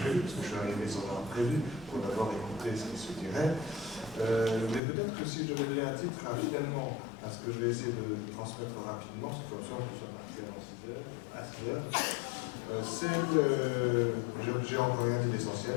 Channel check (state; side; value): drops out; right; at 4.8 s